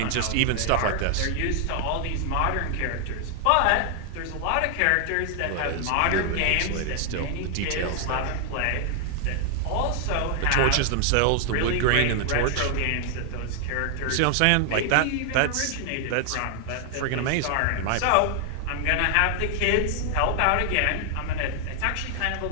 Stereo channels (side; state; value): both; different; correlation 0.00